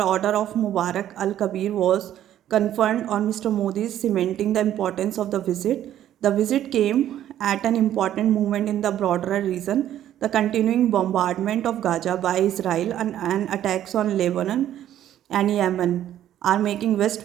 Order of Mubarak Al Kabir, was conferred on Mr. Modi's, cementing the importance of the visit. The visit came at an important moment in the broader region. The continuing bombardment of Gaza by Israel and attacks on Lebanon and Yemen are making West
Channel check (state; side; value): quieter; left; 11.6 dB